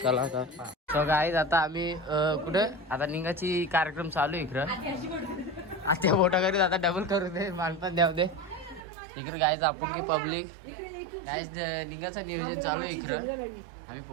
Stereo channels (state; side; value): drops out; left; at 8.8 s